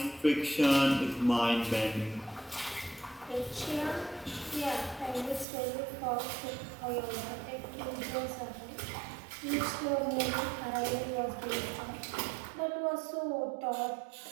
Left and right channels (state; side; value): drops out; left; at 5.5 s